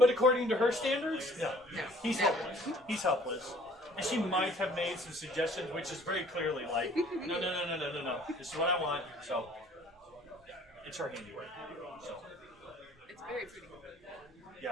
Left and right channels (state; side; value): normal; both; correlation 0.54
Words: according to her standards, no. No. He's No. helpless. He's helpless. And she might have made some suggestions, which is very clearly like, no. This is what I want. So, it's her handiwork. So, It's very pretty.